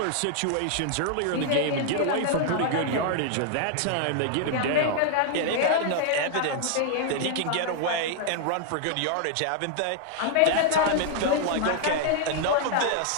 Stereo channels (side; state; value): both; different; correlation -0.01